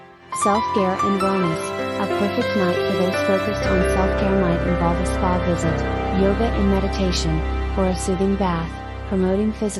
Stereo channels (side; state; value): both; identical; correlation 1.00